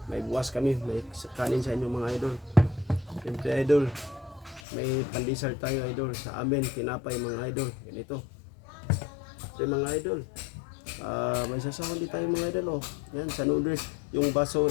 may buwas kami, may kanin sa inyo mga idol. Siyempre idol, may pandesal tayo idol sa amin, tinapay mga idol. Ganito. Ito mga idol. May sasahon din tayo mga idol oh. Yan sa noodles, yung baso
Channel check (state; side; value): drops out; right; at 4.6 s